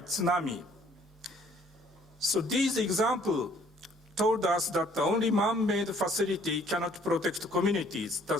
tsunami. So these examples told us that the only man-made facility cannot protect communities. The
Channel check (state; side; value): normal; both; correlation 0.60